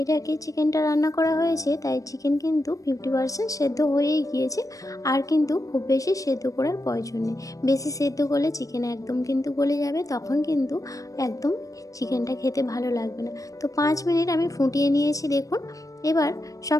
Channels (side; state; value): right; late; 0.16 ms